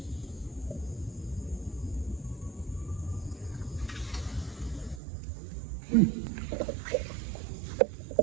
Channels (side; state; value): left; drops out; at 5.0 s